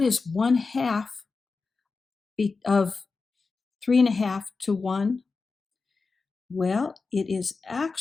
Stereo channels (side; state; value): right; quieter; 4.3 dB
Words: is 1/2 of 3.5 to 1? Well, it is